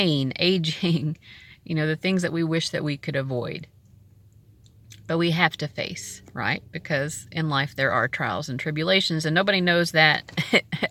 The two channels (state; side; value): identical; both; correlation 1.00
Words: aging, the things that we wish that we could avoid. But we have to face, right? Because in life there are trials and tribulations, and nobody knows that